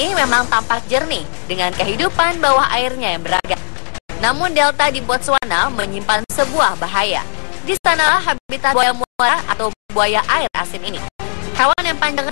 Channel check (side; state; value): right; silent; 64 dB below the other